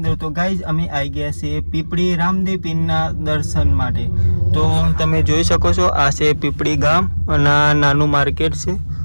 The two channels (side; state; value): both; inverted; correlation -1.00